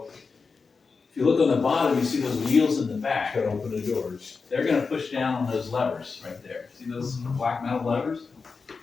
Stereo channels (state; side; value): quieter; right; 4.8 dB